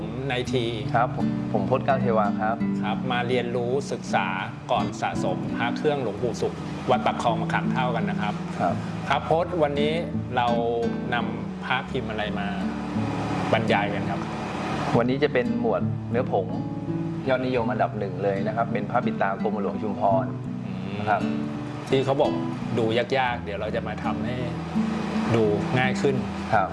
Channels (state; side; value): identical; both; correlation 1.00